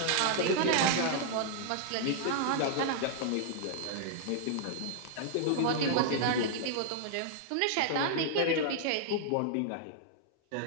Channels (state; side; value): different; both; correlation -0.01